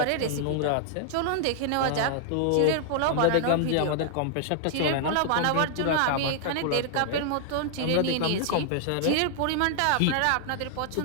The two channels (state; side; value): different; both; correlation -0.01